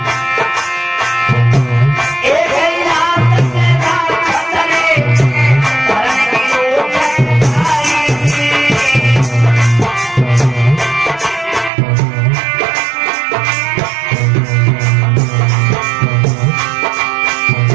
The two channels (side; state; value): left; drops out; at 11.7 s